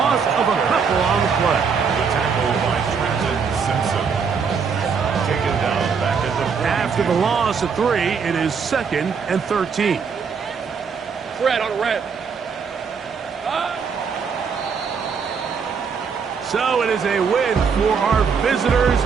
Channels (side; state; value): left; quieter; 6.0 dB